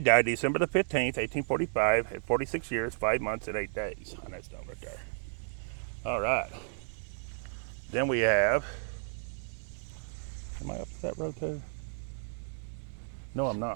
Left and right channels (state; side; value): silent; left; 56 dB below the other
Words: died December the 15th, 1845 at 46 years, 5 months and 8 days on that stone right there. All right. Then we have, am I up that road too? No, I'm